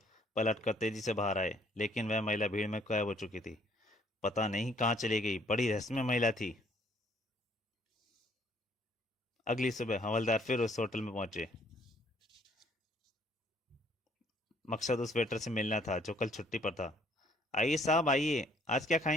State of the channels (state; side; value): normal; both; correlation 0.63